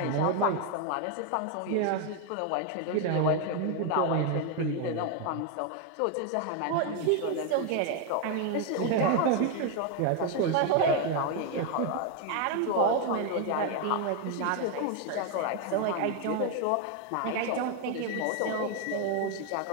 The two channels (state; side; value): different; both; correlation 0.01